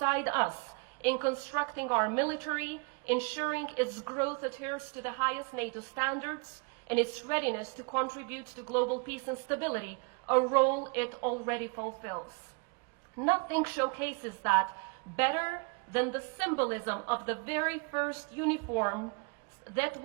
us in constructing our military, ensuring its growth adheres to the highest NATO standards, and its readiness to contribute to global peace and stability, a role it already fulfills. Nothing showcases that better than the symbolism of the very first uniforms that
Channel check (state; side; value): quieter; left; 33.2 dB